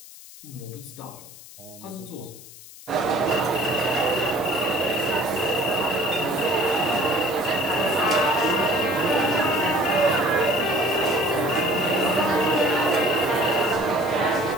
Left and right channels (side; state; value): left; noise; hiss, 18 dB below the sound